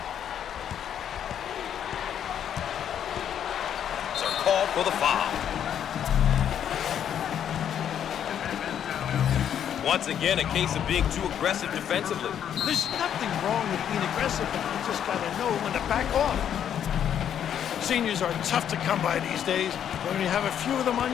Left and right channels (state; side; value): quieter; right; 9.4 dB